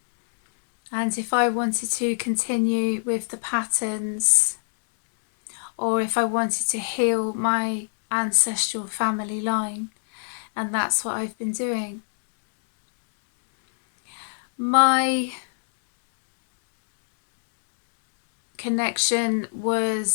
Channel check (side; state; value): right; silent; digital silence